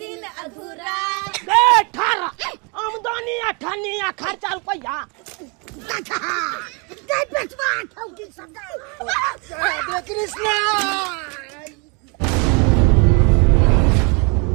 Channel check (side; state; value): left; quieter; 32.6 dB